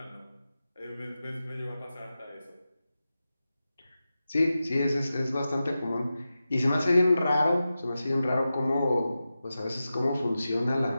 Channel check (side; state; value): both; inverted; correlation -0.93